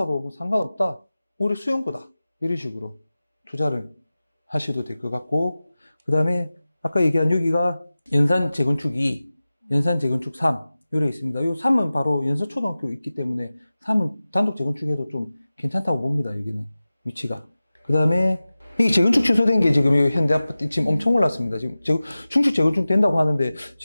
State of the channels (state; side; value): inverted; both; correlation -0.96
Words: 뭐 상관없다. 우리 수영구다. 이런 식으로 투자를 하셔도 될 것 같고 그 다음에 아까 얘기한 여기가 연산 재건축 2, 연산 재건축 3 요래 있습니다. 요 3은 바로 연서초등학교 있기 때문에 3은 단독 재건축해도 좀 괜찮다고 봅니다. 여기는 위치가. 그 다음에 이게 재건축 취소된 게 지금 현대 아파트 지금 엄청 올랐습니다. 지금 중축 재건축 된다고 하는데